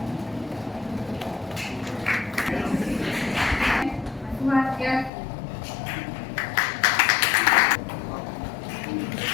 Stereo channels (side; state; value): right; drops out; at 5.1 s